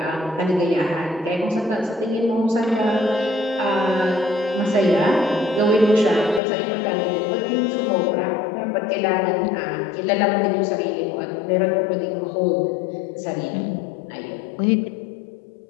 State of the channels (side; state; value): right; drops out; at 6.4 s